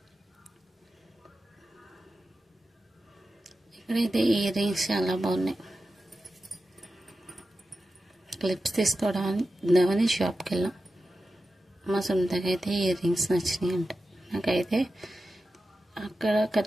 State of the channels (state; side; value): normal; both; correlation 0.92